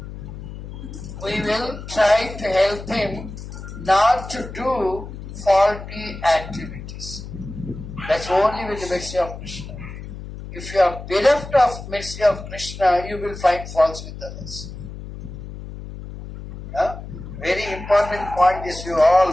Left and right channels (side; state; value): left; noise; hum, 11 dB below the sound